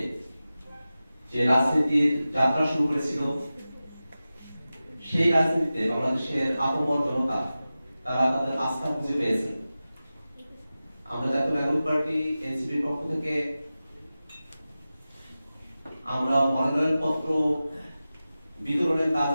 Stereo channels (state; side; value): inverted; both; correlation -0.95